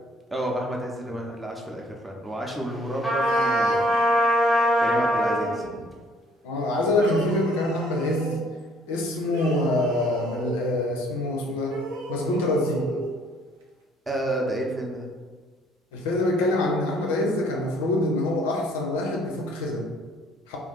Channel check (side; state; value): both; normal; correlation 0.60